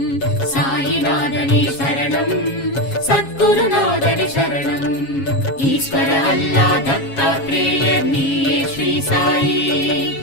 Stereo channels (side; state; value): right; late; 7.3 ms